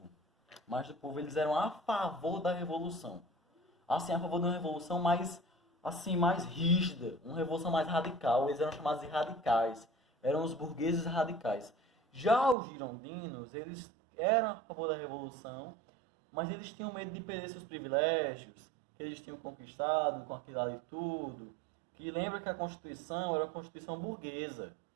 Eles eram a favor da revolução. Assim, a favor de uma revolução mais rígida, uma revolução mais radical. Eles eram chamados de radicais. Eram os burgueses radicais. Já os girondinos, eles eram a favor da revolução, mas eles tinham medo de perder seus privilégios, que eles tinham conquistado com aquilo ali tudo. Que lembra que a Constituição era uma Constituição burguesa.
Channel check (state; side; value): drops out; left; at 12.6 s